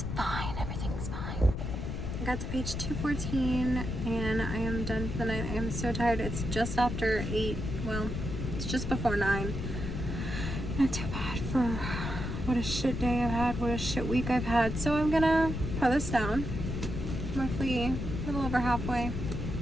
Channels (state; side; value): noise; left; rumble, 4 dB below the sound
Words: fine, everything's fine. I got to page 214 and I am done for the night. I am so tired. It's just after 8. Well, it's just before 9. Not too bad for what a shit day I've had, what a shit week I've had. So I'm gonna put this down. I'm roughly a little over halfway.